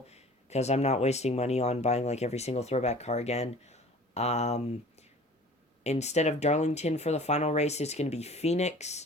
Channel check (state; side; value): normal; both; correlation 0.45